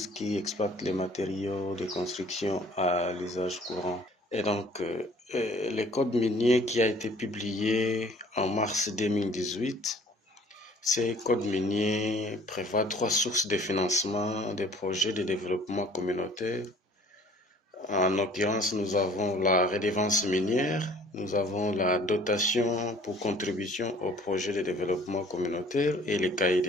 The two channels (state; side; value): normal; both; correlation 0.53